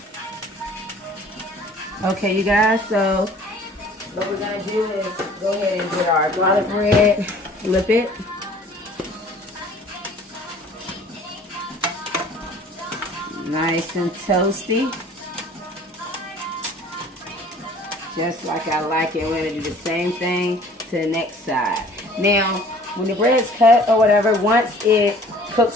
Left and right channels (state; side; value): normal; both; correlation 0.51